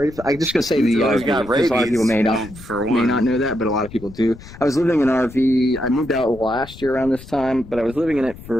for. I'm just gonna say the always RV, got because a lot of people may rabies, for not one. know that, but a lot of people do. I was living in an RV. I moved out last year around this time, but I was living in it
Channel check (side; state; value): left; noise; rumble, 17 dB below the sound